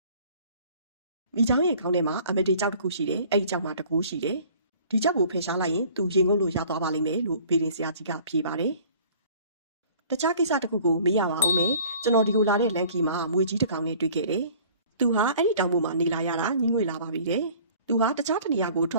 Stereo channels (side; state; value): both; inverted; correlation -0.51